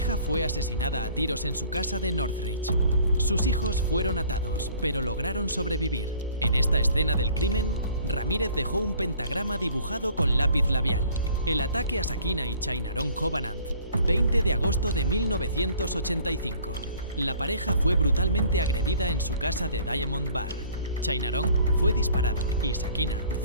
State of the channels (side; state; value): both; inverted; correlation -0.54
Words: fue asesinada a tiros en su casa de Northridge. Sus hijos fueron atados, pero lograron sobrevivir. En esta escena del crimen, Ramírez dejó un pentagrama dibujado con lápiz labial. El ataque a Sakina y Chainaron Covenant, 20 de agosto de 1985. La pareja fue brutalmente agredida en su casa de Diamond Bar. Chainaron fue disparado y Sakina